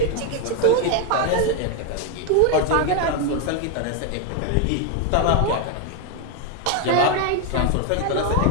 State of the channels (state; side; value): different; both; correlation 0.01